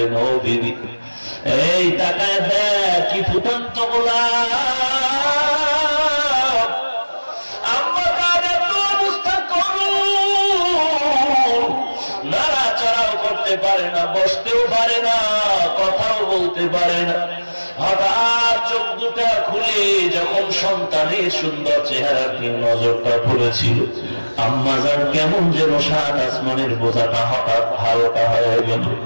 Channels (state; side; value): inverted; both; correlation -1.00